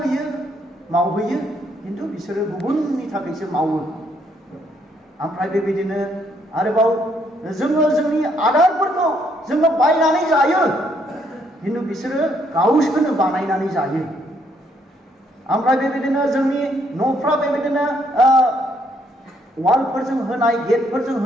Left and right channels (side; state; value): both; normal; correlation 0.71